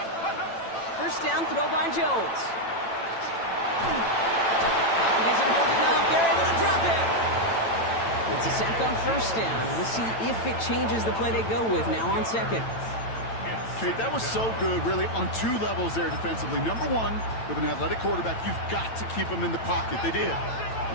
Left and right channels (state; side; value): late; right; 9.0 ms